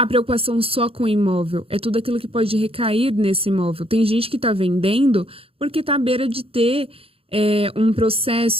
preocupação só com o imóvel, é tudo aquilo que pode recair nesse imóvel. Tem gente que está vendendo porque está à beira de ter um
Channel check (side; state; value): left; late; 0.27 ms